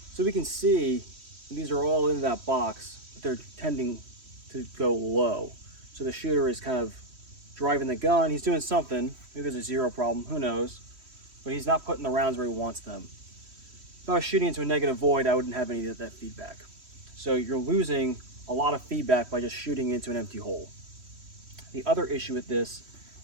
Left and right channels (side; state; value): left; late; 3.1 ms